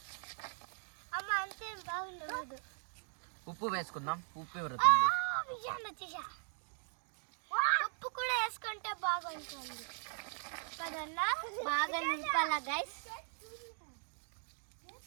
అమ్మ అంతే బాగుండదు. ఉప్పు వేసుకుందాం. ఉప్పు ఉప్పు కూడా వేసుకుంటే బాగుంటుంది కదన్నా. బాగా నింపాలా గైస్.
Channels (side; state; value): left; silent; 52 dB below the other